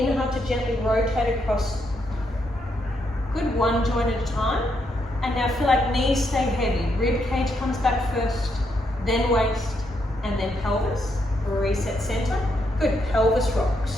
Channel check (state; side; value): normal; both; correlation 0.78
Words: to gently rotate across. Good, one joint at a time. And now feel like knees stay heavy. Rib cage comes back first, then waist, and then pelvis. Reset center. Good, pelvis